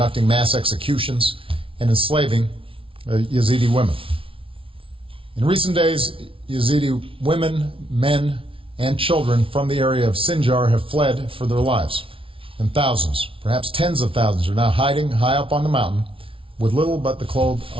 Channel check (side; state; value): left; late; 0.26 ms